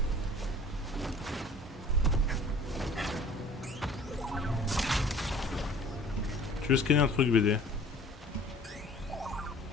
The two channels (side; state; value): both; normal; correlation 0.50